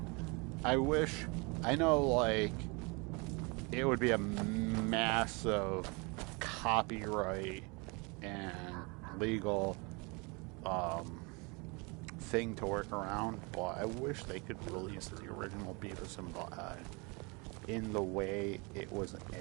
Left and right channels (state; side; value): quieter; left; 29.4 dB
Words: I know, like, it would be a massive copyright and legal thing to work around, but I wish they could release the original Beavis and Butthead in the way it was